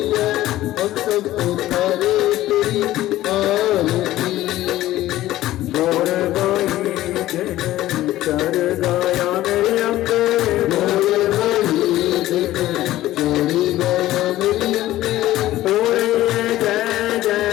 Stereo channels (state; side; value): quieter; right; 15.2 dB